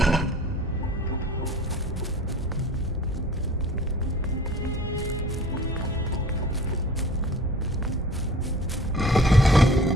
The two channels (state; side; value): normal; both; correlation 0.45